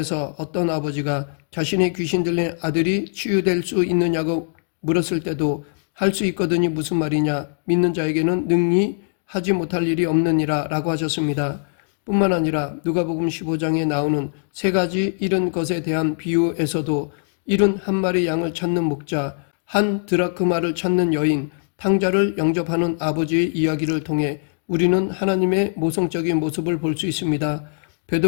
어떤 아버지가 자신의 귀신 들린 아들이 치유될 수 있느냐고 물었을 때도 할 수 있거든이 무슨 말이냐, 믿는 자에게는 능히 하지 못할 일이 없느니라 라고 하셨습니다. 뿐만 아니라 누가복음 15장에 나오는 세 가지 잃은 것에 대한 비유에서도 잃은 한 마리 양을 찾는 목자, 한 드라크마를 찾는 여인, 탕자를 영접하는 아버지의 이야기를 통해 우리는 하나님의 모성적인 모습을 볼 수 있습니다.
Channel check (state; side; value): silent; right; digital silence